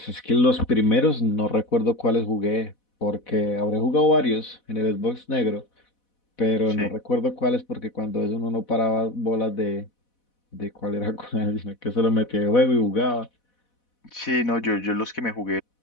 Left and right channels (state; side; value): late; right; 4.1 ms